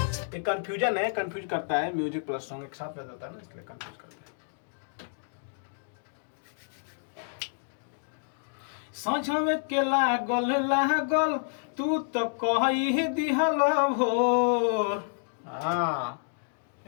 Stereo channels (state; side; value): silent; right; digital silence